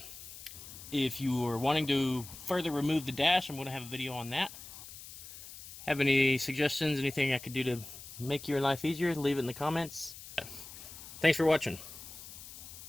If you are wanting to further remove the dash, I'm going to have a video on that. Have any suggestions, anything I could do to make your life easier, leave it in the comments. Thanks for watching.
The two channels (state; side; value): noise; left; hiss, 14 dB below the sound